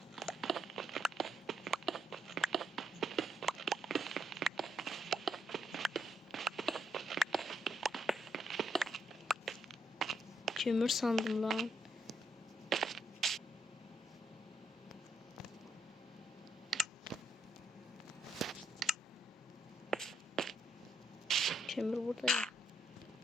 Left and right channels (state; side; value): normal; both; correlation 0.76